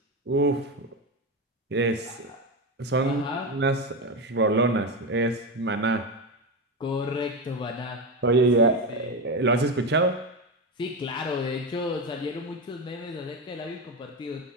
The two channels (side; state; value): both; normal; correlation 0.15